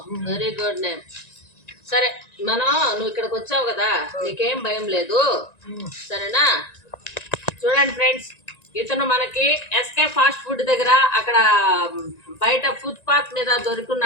Very good name. సరే నువ్వు ఇక్కడికి వచ్చావు కదా, నీకేం భయం లేదు సరేనా? చూడండి ఫ్రెండ్స్, ఇతను మనకి ఎస్కే ఫాస్ట్ ఫుడ్ దగ్గర అక్కడ బయట ఫుట్పాత్ మీద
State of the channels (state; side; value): late; right; 1.9 ms